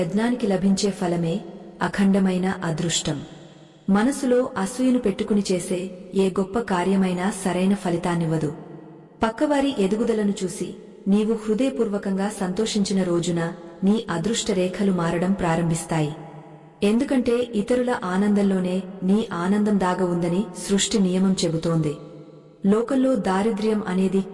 లభించే ఫలమే అఖండమైన అదృష్టం. మనసులో అసూయను పెట్టుకుని చేసే ఏ గొప్ప కార్యమైనా సరైన ఫలితాన్నివ్వదు. పక్కవారి ఎదుగుదలను చూసి నీవు హృదయపూర్వకంగా సంతోషించిన రోజున నీ అదృష్ట రేఖలు మారడం ప్రారంభిస్తాయి. ఎందుకంటే ఇతరుల ఆనందంలోనే నీ ఆనందం దాగ ఉందని సృష్టి నియమం చెబుతోంది. లోకంలో దారిద్ర్యం అనేది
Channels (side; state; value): both; identical; correlation 1.00